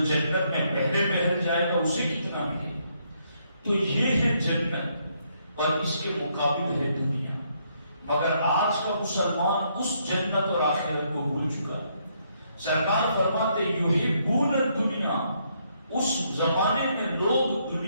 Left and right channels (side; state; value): both; inverted; correlation -0.73